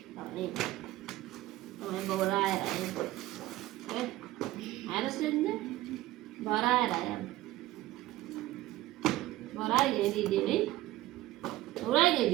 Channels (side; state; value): left; quieter; 16.5 dB